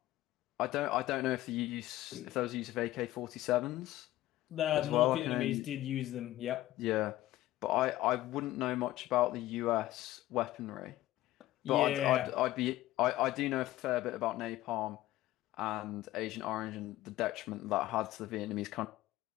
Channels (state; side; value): quieter; right; 15.6 dB